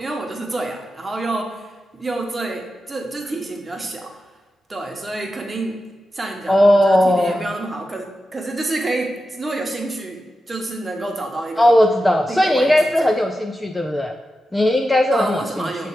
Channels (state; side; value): normal; both; correlation 0.91